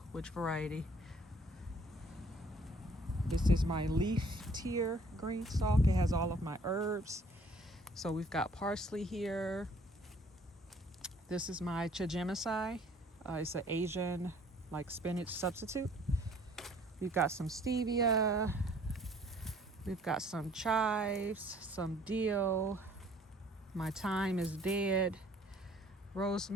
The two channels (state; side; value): normal; both; correlation 0.57